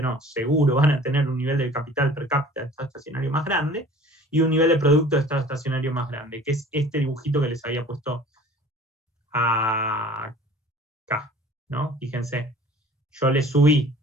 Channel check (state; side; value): normal; both; correlation 0.47